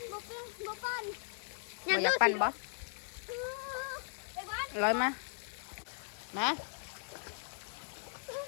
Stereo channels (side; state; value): right; silent; digital silence